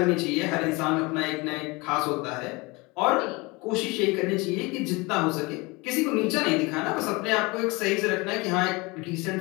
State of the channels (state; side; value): quieter; right; 25.3 dB